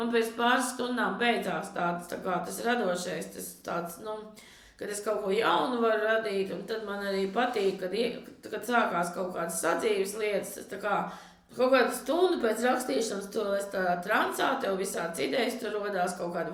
pēc pāris stundām beidzās tas radošais, tas tāds, kad es kaut ko jaunu varu radīt, un tad man arī patīk, kad sākās kaut kādas sadzīves lietas, tas tā kā Kaut kādu stundu pēc rakstīšanas tu esi tādā transā, tev visāds idejas, tur rodās kaut kādi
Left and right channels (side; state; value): both; identical; correlation 1.00